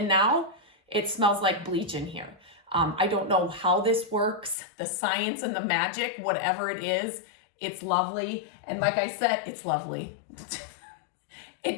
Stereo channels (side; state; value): right; drops out; at 4.5 s